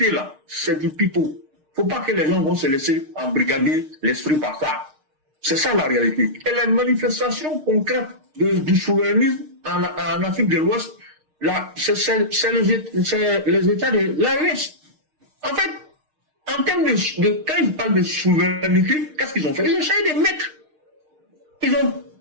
c'est du pipeau. Faut pas que les gens vont se laisser embrigader l'esprit par ça. C'est ça la réalité. Et la manifestation concrète du souverainisme en Afrique de l'Ouest, là, c'est les États de l'AES. En fait, en termes quand ils parlent de souveraineté, qu'est-ce qu'ils ont fait? Ils ont essayé de mettre. Ils ont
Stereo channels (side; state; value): left; late; 6.5 ms